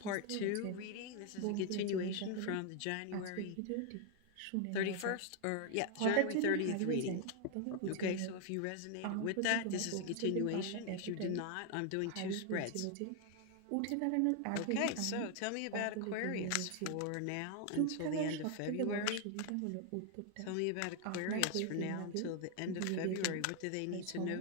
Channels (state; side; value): different; both; correlation 0.00